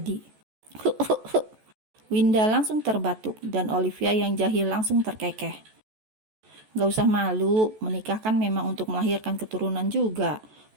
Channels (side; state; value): left; late; 14 ms